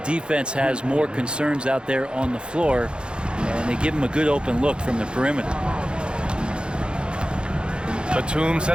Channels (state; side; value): late; left; 0.052 ms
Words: has more concerns out there on the floor, and they give him a good open look from the perimeter. Batum